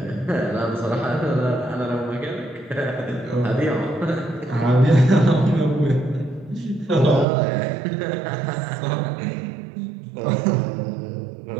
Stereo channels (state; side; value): drops out; left; at 7.2 s